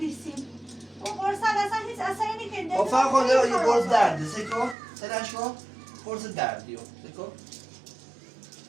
اون قرص اصلا هیچ اثری نکنده خب فقط خونده یه قرص درده سکو سرشو قرص دردیو سکو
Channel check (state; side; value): drops out; left; at 4.8 s